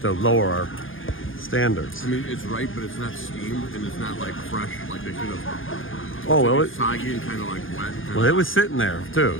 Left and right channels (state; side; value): late; right; 0.58 ms